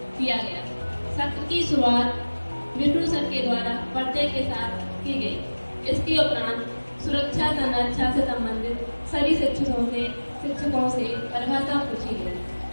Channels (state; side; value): inverted; both; correlation -1.00